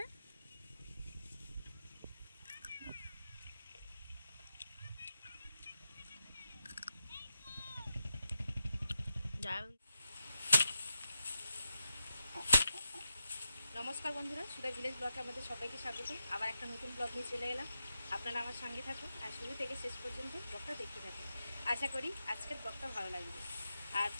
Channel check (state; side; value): inverted; both; correlation -0.87